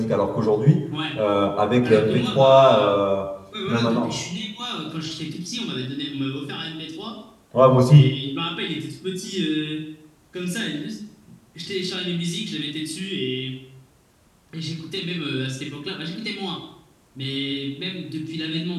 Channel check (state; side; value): identical; both; correlation 1.00